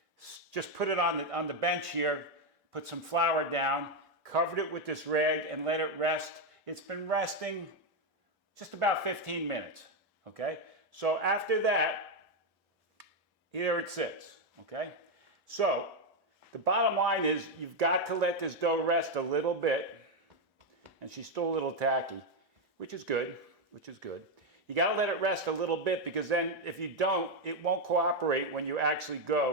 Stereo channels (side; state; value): both; normal; correlation 0.05